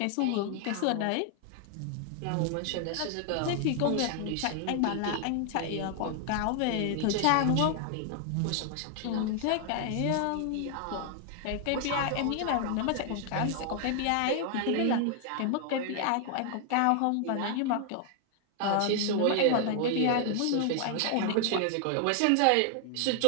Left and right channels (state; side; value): different; both; correlation 0.00